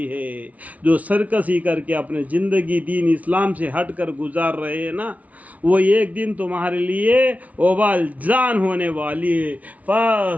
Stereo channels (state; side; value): late; left; 0.070 ms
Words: ہے. جو سرکشی کر کے اپنے زندگی دین اسلام سے ہٹ کر گزار رہے ہیں نا، وہ ایک دن تمہارے لیے وبال جان ہونے والی ہے.